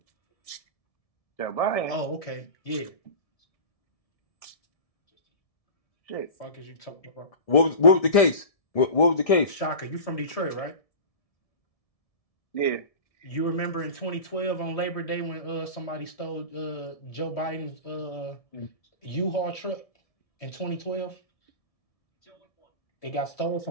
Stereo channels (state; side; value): late; right; 1.7 ms